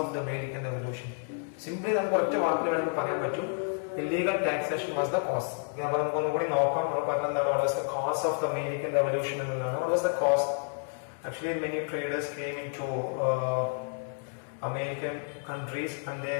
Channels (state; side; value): silent; right; 58 dB below the other